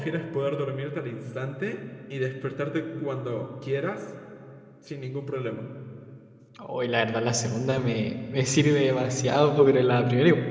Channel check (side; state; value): both; identical; correlation 1.00